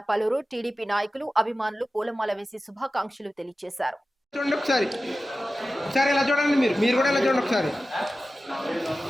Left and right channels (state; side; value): normal; both; correlation 0.94